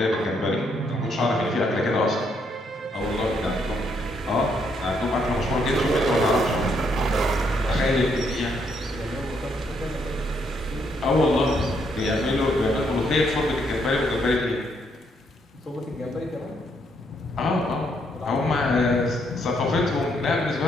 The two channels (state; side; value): normal; both; correlation 0.73